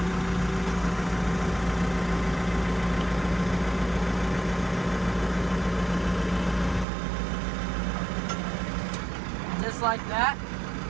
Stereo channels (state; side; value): drops out; left; at 6.9 s